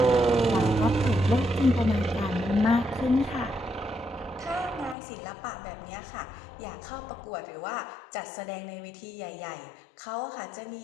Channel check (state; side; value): drops out; right; at 5.0 s